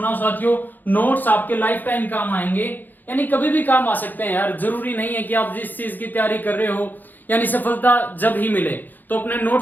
साथियों। नोट्स आपके लाइफ टाइम काम आएंगे, यानी कभी भी काम आ सकते हैं यार, जरूरी नहीं है कि आप जिस चीज की तैयारी कर रहे हो यानी सफलता जब ही मिले तो अपने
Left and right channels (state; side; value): late; right; 0.087 ms